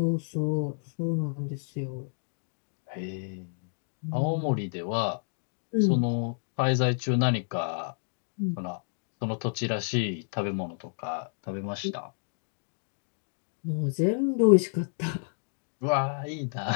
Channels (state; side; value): silent; right; digital silence